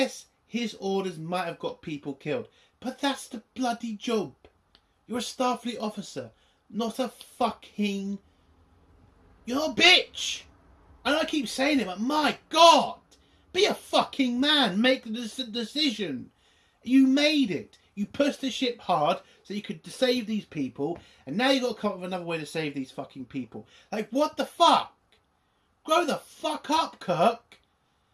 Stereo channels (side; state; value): both; identical; correlation 1.00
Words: his orders might have got people killed. But that's the bloody job. You're a Starfleet officer, not a fucking... You're a bitch! And I keep saying it, but my God! Be a fucking man. Make the decision. You made it. You pushed the ship hard so you could save these people, and now you've got to come up with another way to save these fucking people. Like, what the fuck? Grow the fuck up, Kirk.